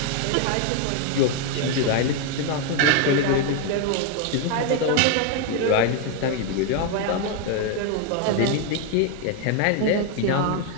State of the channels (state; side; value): different; both; correlation 0.01